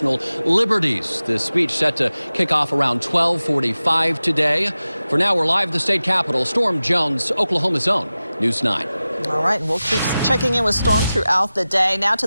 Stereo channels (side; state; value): both; inverted; correlation -0.96